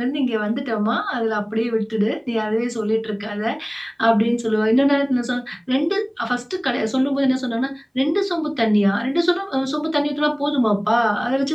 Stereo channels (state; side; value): identical; both; correlation 1.00